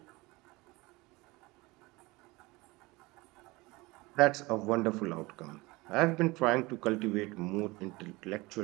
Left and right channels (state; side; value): quieter; left; 22.5 dB